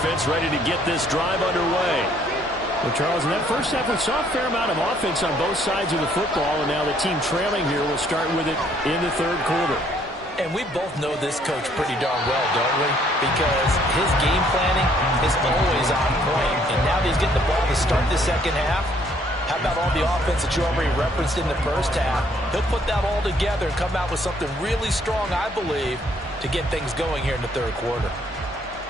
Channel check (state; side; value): normal; both; correlation 0.65